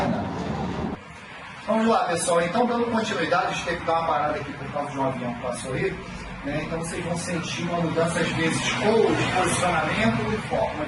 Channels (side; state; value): both; identical; correlation 1.00